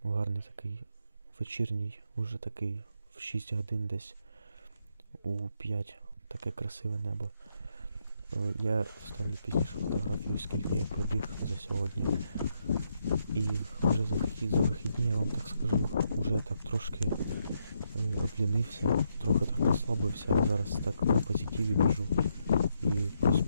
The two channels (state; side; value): inverted; both; correlation -0.78